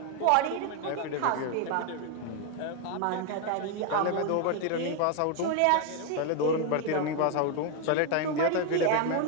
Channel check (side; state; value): both; different; correlation 0.01